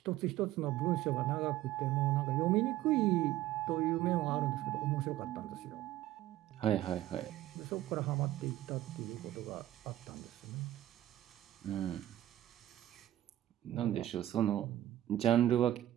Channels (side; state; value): left; quieter; 13.9 dB